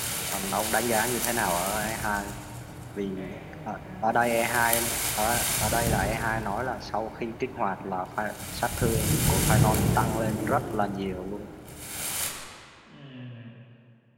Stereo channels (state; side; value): identical; both; correlation 1.00